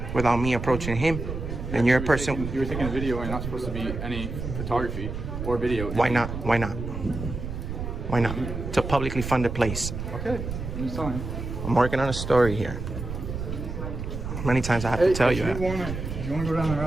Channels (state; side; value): noise; right; rumble, 6 dB below the sound